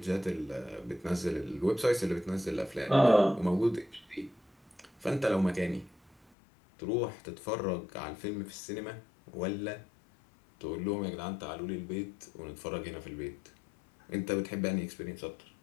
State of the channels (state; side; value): drops out; right; at 6.2 s